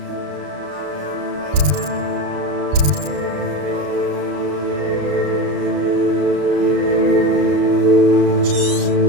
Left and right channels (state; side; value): late; left; 34 ms